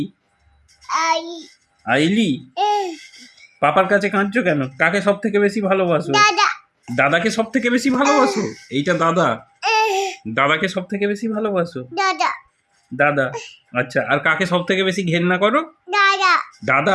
আইলি। পাপার কাছে কাঁদছো কেন? কাকে সব থেকে বেশি ভালোবাসো? দাদাকে সব থেকে বেশি ভালোবাসো? এইটা দাদা। দাদাকে সব থেকে বেশি ভালোবাসো? দাদা। আচ্ছা, আর কাকে সব থেকে বেশি ঘেন্না করো?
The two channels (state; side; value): identical; both; correlation 1.00